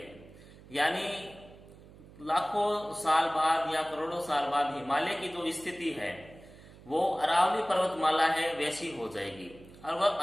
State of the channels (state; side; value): noise; right; hum, 21 dB below the sound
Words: यानी लाखों साल बाद या करोड़ों साल बाद हिमालय की जो स्थिति है वो अरावली पर्वतमाला है वैसी हो जाएगी। और वह